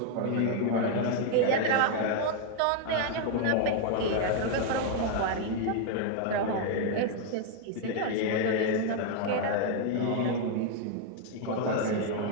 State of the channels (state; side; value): different; both; correlation 0.00